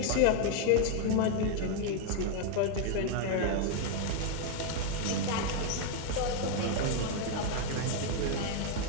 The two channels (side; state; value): both; different; correlation 0.00